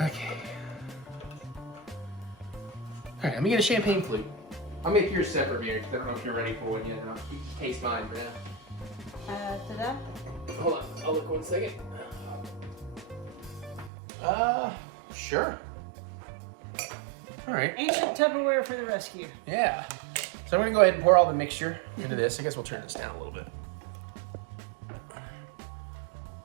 Okay. All right, let me get a champagne flute. I'll make yours separate here because I don't know if you're ready for one yet. I'll taste mine for now. Ta-da. Hold on, I'll look 1 second. Sure. All right. Ancient Tupperware for the rescue. Yeah. So I'm gonna go ahead and pour all the mixture into this. I guess we'll turn this down a little bit. All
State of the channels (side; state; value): left; drops out; at 13.9 s